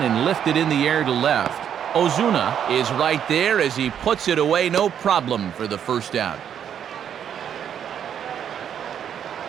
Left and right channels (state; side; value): quieter; left; 8.9 dB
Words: and lifted in the air to left. Ozuna is right there as he puts it away, no problem for the first down.